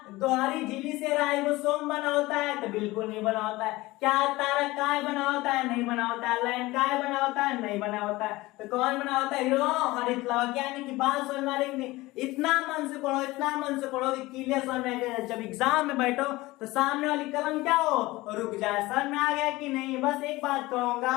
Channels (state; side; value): quieter; right; 19.8 dB